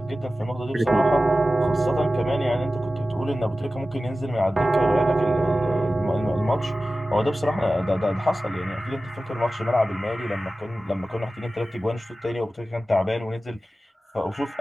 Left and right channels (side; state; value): both; normal; correlation 0.95